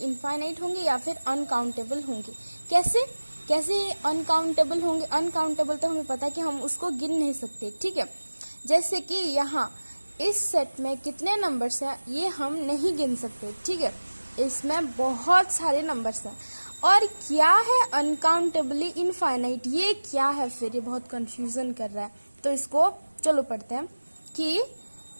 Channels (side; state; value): both; inverted; correlation -1.00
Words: होंगे या फिर अनकाउंटेबल होंगे. कैसे अनकाउंटेबल होंगे? अनकाउंटेबल तो हमें पता है कि हम उसको गिन नहीं सकते. ठीक है, जैसे कि यहाँ इस सेट में कितने नंबर्स हैं ये हम नहीं गिन सकते. ठीक है, इसमें बहुत सारे नंबर्स हैं. और क्या है अनकाउंटेबली इनफाइनाइट, ये क्या है फिर? ये बहुत कंफ्यूजन कर रहा है. तो इसको चलो पढ़ते हैं कि